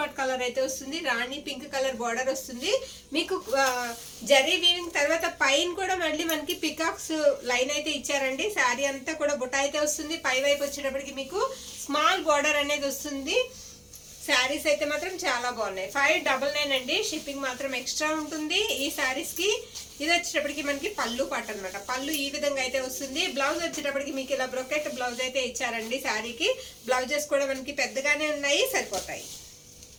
కలర్ అయితే వస్తుంది. రాణి పింక్ కలర్ బార్డర్ వస్తుంది. మీకు జరీ వీవింగ్ తర్వాత పైన కూడా మళ్ళీ మనకి పికాక్స్ లైన్ అయితే ఇచ్చారండి. శారీ అంతా కూడా బుట్ట అయితే వస్తుంది. పై వైపు వచ్చేటప్పటికి మీకు స్మాల్ బార్డర్ అనేది వస్తుంది. శారీస్ అయితే మాత్రం చాలా బాగున్నాయి. 599 అండి. షిప్పింగ్ మాత్రం ఎక్స్ట్రా ఉంటుంది ఈ శారీస్ కి. ఇది వచ్చేటప్పటికి మనకి పళ్ళు పాట అనమాట. పళ్ళు ఈ విధంగా అయితే వస్తుంది. బ్లౌజ్ వచ్చేటప్పటికి మీకు ఇలా బ్రొకెట్ బ్లౌజ్ అయితే ఇచ్చారండి. శారీకి బ్లౌజెస్ కూడా మనకి పెద్దగానే ఉన్నాయి, సరిపోతాయి.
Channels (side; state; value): both; identical; correlation 1.00